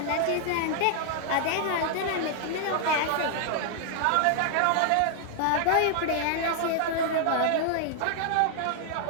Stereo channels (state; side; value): different; both; correlation 0.00